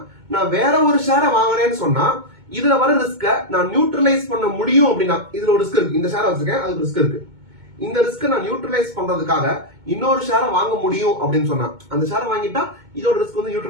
நான் வேற ஒரு ஷேரை வாங்குறேன்னு சொன்னா இதுல வர ரிஸ்க நான் நியூட்ரலைஸ் பண்ண முடியும் அப்படின்னா இதுல ஒரு ரிஸ்க் இருக்கு. இந்த ஷேரை வச்சிருக்கேன், அதுக்கு ரிஸ்க் இருக்கு. இந்த ரிஸ்க் நான் நியூட்ரலைஸ் பண்றதுக்காக இன்னொரு ஷேரை வாங்க முடியும் அப்படின்னு சொன்னா அந்த ஷேரை வாங்கிட்டா இதோட ரிஸ்க் வந்து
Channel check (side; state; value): left; late; 2.2 ms